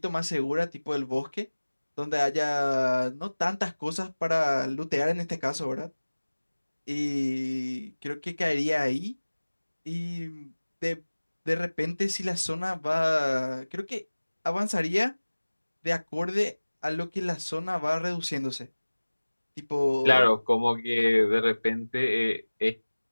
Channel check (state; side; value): inverted; both; correlation -1.00